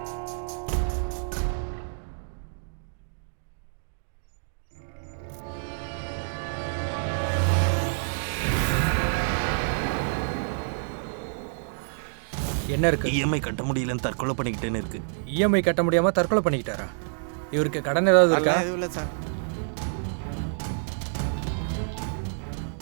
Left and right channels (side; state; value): left; silent; digital silence